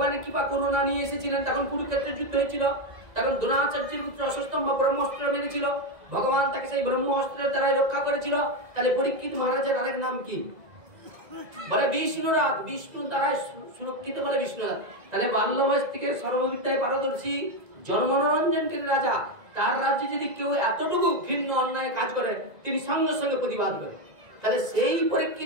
কৃপা করুণা নিয়ে এসেছিলেন। তখন কুরুক্ষেত্রের যুদ্ধ হয়েছিল, তখন দ্রোণাচার্যের পুত্র অশ্বত্থামা ব্রহ্মাস্ত্র মেরেছিল, ভগবান তাকে সেই ব্রহ্মাস্ত্রের দ্বারা রক্ষা করেছিল। তাহলে পরীক্ষিত মহারাজের আরেক নাম কি? বলে বিষ্ণুরাজ, বিষ্ণু দ্বারা সুরক্ষিত বলে বিষ্ণুরাজ। তাহলে বাল্য বয়স থেকে সর্ববিদ্যায় পারদর্শী, জনমনোরঞ্জনকারী রাজা, তার রাজ্যে যদি কেউ এতটুকু ঘৃণ্য অন্যায় কাজ করে, তিনি সঙ্গে সঙ্গে প্রতিবাদ করেন। তাহলে সেই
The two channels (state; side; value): late; left; 2.0 ms